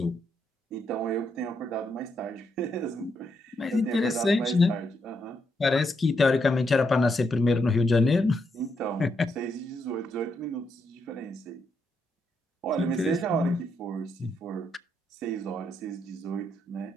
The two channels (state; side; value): normal; both; correlation 0.79